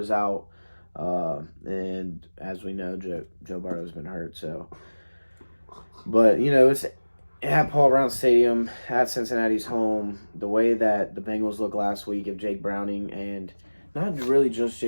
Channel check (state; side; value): inverted; both; correlation -1.00